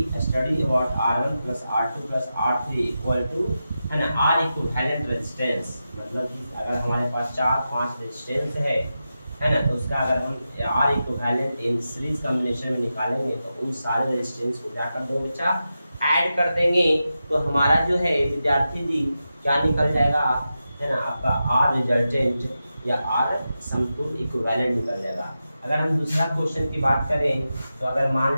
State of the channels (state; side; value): inverted; both; correlation -0.90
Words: study about R1 plus R2 plus R3 equal to, है ना, R equivalent resistance. मतलब कि अगर हमारे पास 4-5 रेजिस्टेंस है ना, तो उसका अगर हम R equivalent in series combination में निकालेंगे तो उन सारे रेजिस्टेंस को क्या कर दो बच्चा, ऐड कर देंगे। तो हमारा जो है विद्यार्थी जी क्या निकल जाएगा, है ना, आपका R रिजल्टेंट या R समतुल्य इक्विवेलेंट निकल जाएगा। अगर हम दूसरा क्वेश्चन की बात करें तो अगर मान